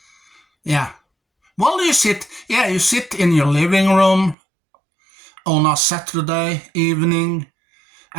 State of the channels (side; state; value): left; drops out; at 4.4 s